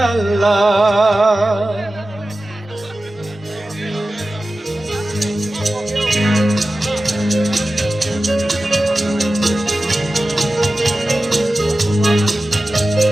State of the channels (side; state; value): both; normal; correlation 0.95